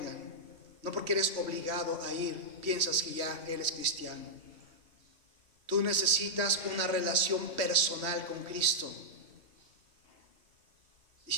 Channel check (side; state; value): left; late; 3.0 ms